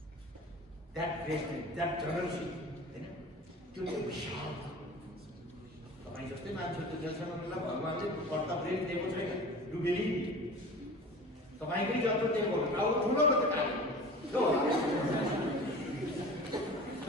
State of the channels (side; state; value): both; normal; correlation 0.37